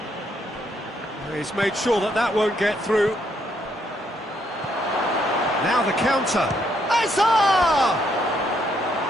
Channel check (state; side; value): normal; both; correlation 0.73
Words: He's made sure that that won't get through. Now the counter. Azar!